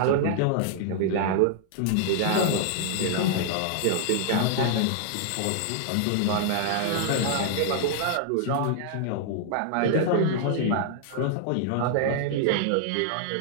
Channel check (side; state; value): both; different; correlation -0.01